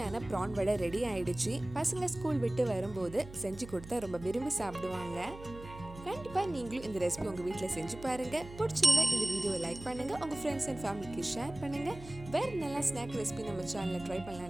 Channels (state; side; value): noise; right; hum, 15 dB below the sound